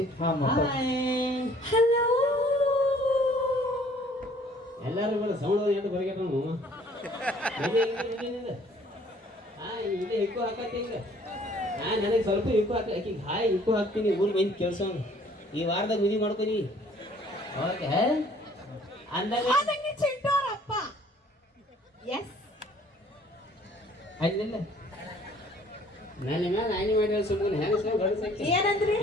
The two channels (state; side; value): normal; both; correlation 0.57